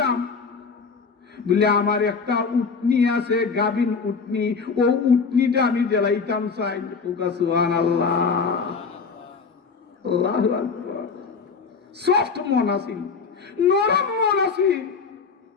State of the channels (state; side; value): quieter; right; 5.1 dB